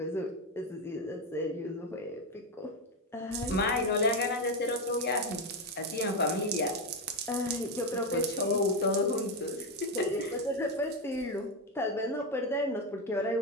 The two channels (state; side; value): normal; both; correlation 0.09